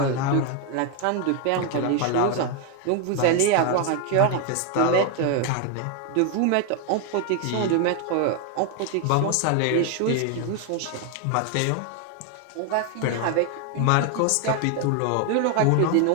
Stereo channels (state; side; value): different; both; correlation 0.01